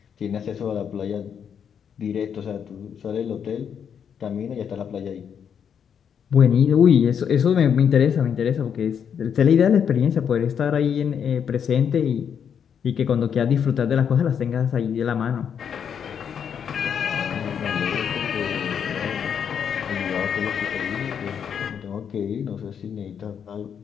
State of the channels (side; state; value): right; quieter; 7.8 dB